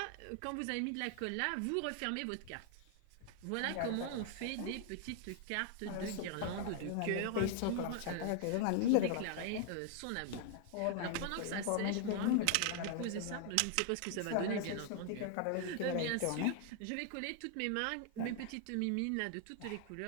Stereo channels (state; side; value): different; both; correlation 0.00